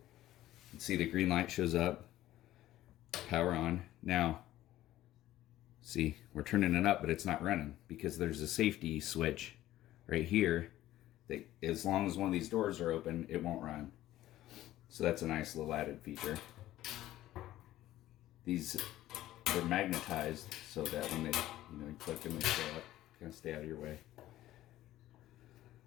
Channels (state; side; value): quieter; right; 14.6 dB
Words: see the green light shows up, power on. Now, see, we're turning it up, but it's not running because there's a safety switch right here that as long as one of these doors are open, it won't run. So that's a nice little added feature. These are magnetized so that when they, you click them, they stay up, kind of stay out of your way.